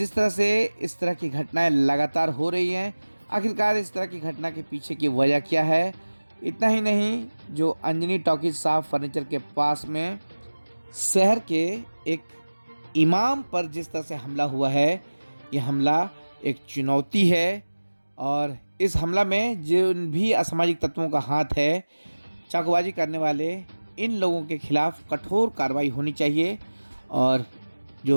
तरह से इस तरह की घटनाएं लगातार हो रही हैं, आखिरकार इस तरह की घटना के पीछे की वजह क्या है। इतना ही नहीं, जो अंजनी टॉकीज साफ फर्नीचर के पास में शहर के एक इमाम पर जिस तरह से हमला हुआ है, यह हमला एक चुनौती है और इस हमला में जिन भी असामाजिक तत्वों का हाथ है, चाकूबाजी करने वाले इन लोगों के खिलाफ कठोर कार्रवाई होनी चाहिए। और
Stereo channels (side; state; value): both; inverted; correlation -1.00